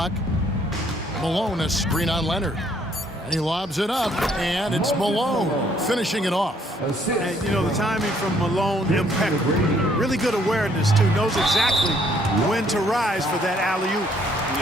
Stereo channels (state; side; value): normal; both; correlation 0.65